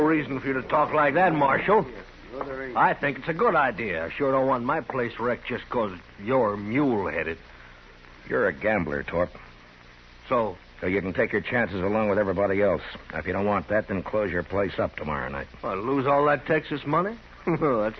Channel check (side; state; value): both; identical; correlation 1.00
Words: for you to talk like that, Marshal. I think it's a good idea. I sure don't want my place wrecked just 'cause you're mule-headed. You're a gambler, Torp. So you can take your chances along with everybody else. Now, if you don't want that, then close your place up tomorrow night. I'll lose all that Texas money?